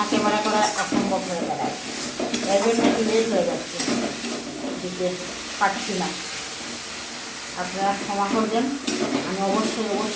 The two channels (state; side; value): noise; right; hum, 28 dB below the sound